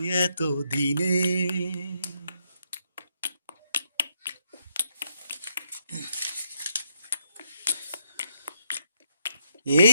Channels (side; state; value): both; inverted; correlation -0.75